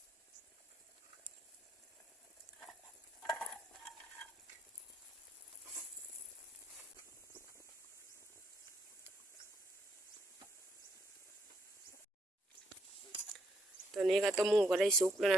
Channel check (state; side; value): normal; both; correlation 0.72